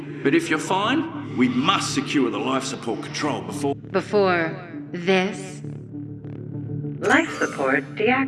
But if you're fine, we must secure the life support control before... Before this? Life support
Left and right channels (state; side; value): identical; both; correlation 1.00